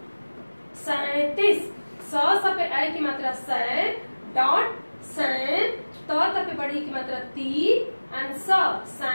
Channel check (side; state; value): both; inverted; correlation -1.00